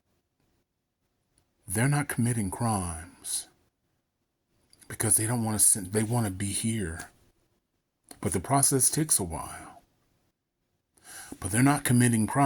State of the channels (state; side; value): identical; both; correlation 1.00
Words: They're not committing crimes because they don't want to. They want to be here, but the process takes a while. But they're not committing